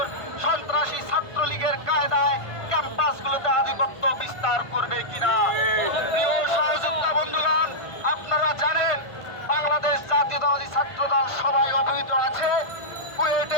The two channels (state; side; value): late; right; 1.5 ms